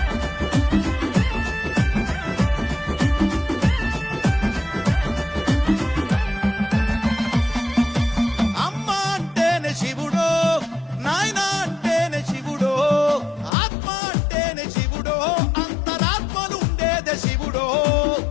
అమ్మ అంటేనే శివుడో నాయన అంటేనే శివుడో ఆత్మ అంటేనే శివుడో అంతరాత్మలు ఉండేదే శివుడో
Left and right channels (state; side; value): drops out; right; at 13.5 s